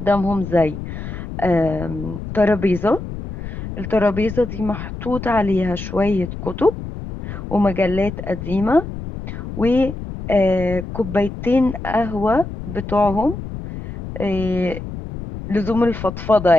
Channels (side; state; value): left; noise; rumble, 9 dB below the sound